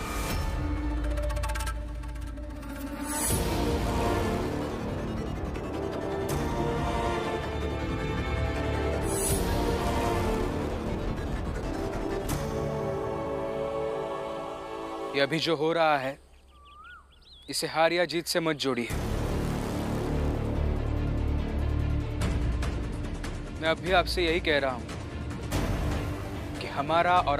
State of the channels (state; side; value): identical; both; correlation 1.00